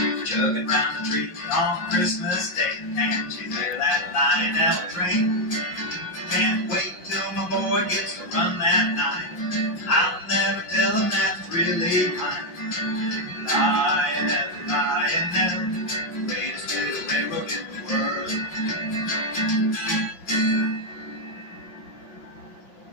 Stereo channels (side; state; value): right; late; 5.6 ms